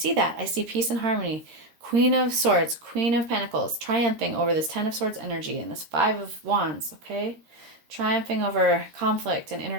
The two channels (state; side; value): late; left; 13 ms